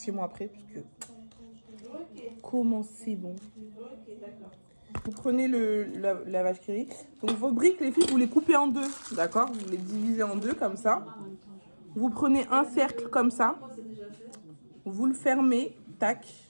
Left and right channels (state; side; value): inverted; both; correlation -1.00